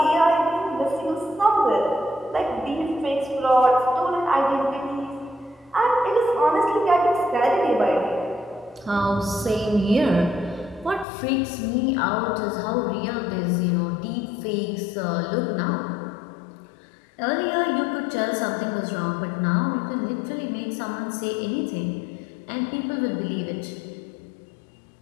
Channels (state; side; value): drops out; right; at 11.1 s